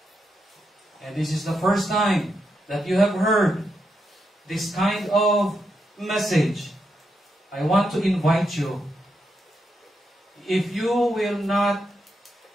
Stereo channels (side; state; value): both; normal; correlation 0.83